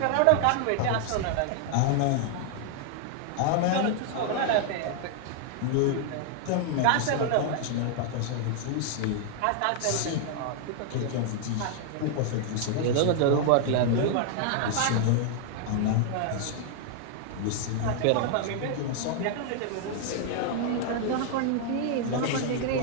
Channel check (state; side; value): different; both; correlation 0.00